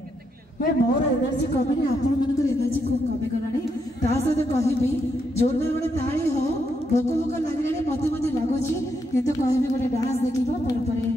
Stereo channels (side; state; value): both; normal; correlation 0.79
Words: मैं मोर एनर्जी कमी आपण मन एनर्जी खूब कमी गलानी ता सहित कहबी जोरदार गोटे ताली हो भोक भोक लगे मत मत लगुच कितु कहबी गोटे डांस देखा